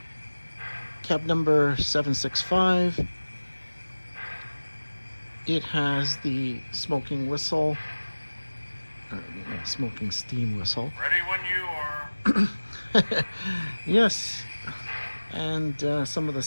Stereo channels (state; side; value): inverted; both; correlation -1.00